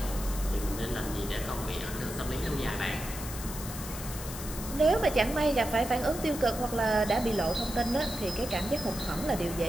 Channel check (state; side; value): noise; left; hiss, 10 dB below the sound